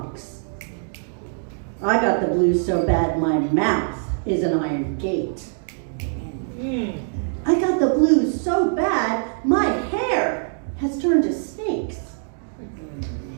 I got the blues so bad, my mouth is an iron gate. I got the blues so bad, my hair has turned to snakes.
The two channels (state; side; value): silent; left; digital silence